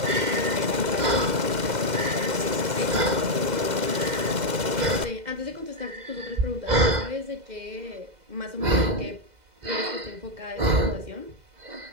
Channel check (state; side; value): late; left; 2.1 ms